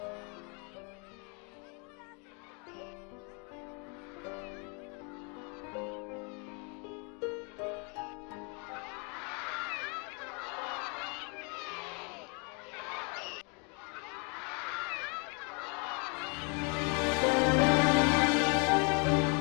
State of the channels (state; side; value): quieter; right; 34.5 dB